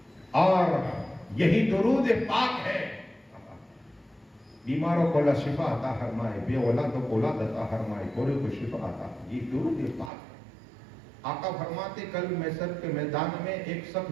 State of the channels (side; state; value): left; drops out; at 10.1 s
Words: اور یہی درود پاک ہے بیماروں کو اللہ شفا عطا فرمائے، بے اولادوں کو اولاد عطا فرمائے، گورے کو شفا عطا، یہ درود پاک ہے۔ آقا فرماتے کل محشر کے میدان میں ایک شخص